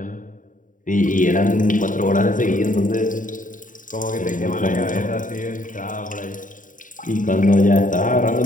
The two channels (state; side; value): late; right; 0.38 ms